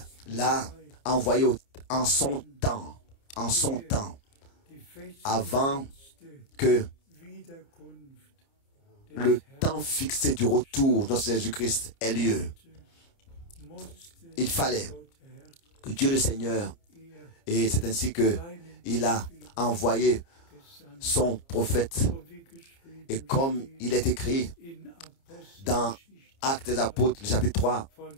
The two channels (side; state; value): right; late; 29 ms